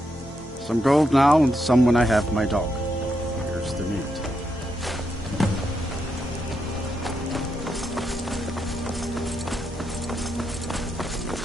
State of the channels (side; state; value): both; normal; correlation 0.82